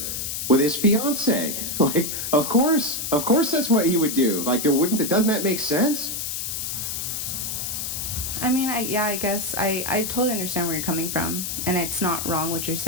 with his fiance. Like, of course that's what he would do. Like, doesn't that make sense? I mean, I guess I totally understand where you're coming from, and it's not wrong what you're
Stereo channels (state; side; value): noise; left; hiss, 3 dB below the sound